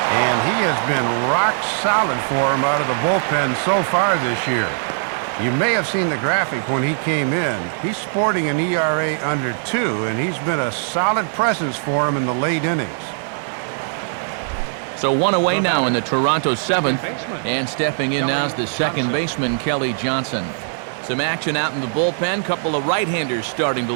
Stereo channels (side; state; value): left; silent; digital silence